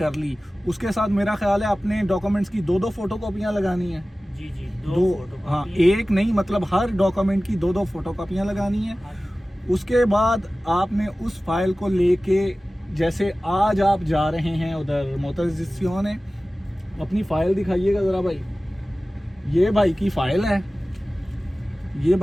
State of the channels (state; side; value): normal; both; correlation 0.97